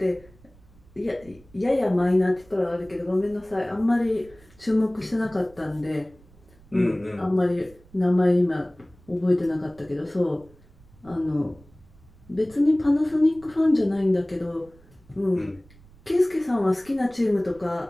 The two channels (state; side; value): noise; right; rumble, 26 dB below the sound